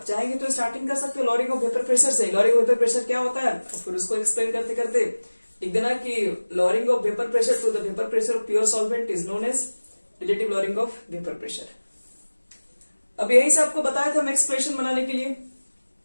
चाहेंगे तो स्टार्टिंग कर सकते हो लॉरिंग ऑफ वेपर प्रेशर से, लॉरिंग ऑफ वेपर प्रेशर क्या होता है, फिर उसको एक्सप्लेन करते करते लिख देना कि lowering of vapour pressure to the vapour pressure of pure solvent is known as relative lowering of vapour pressure. अब यही से आपको बताया था हम एक्सप्रेशन बनाने के लिए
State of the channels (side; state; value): both; inverted; correlation -1.00